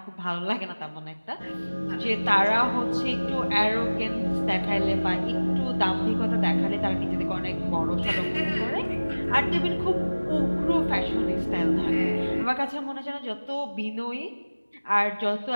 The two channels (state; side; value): inverted; both; correlation -1.00